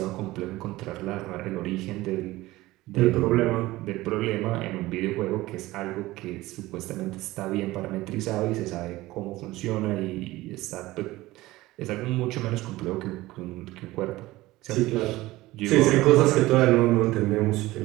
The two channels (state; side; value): quieter; left; 18.3 dB